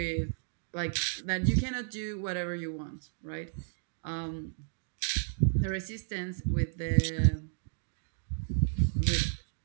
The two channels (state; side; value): silent; left; digital silence